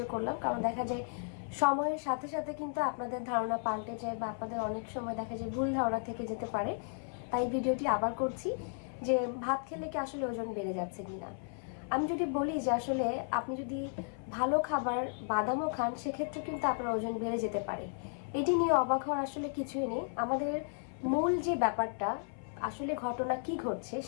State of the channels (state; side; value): silent; right; 55 dB below the other